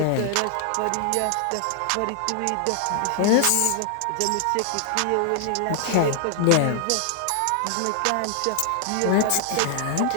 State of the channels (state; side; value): different; both; correlation 0.00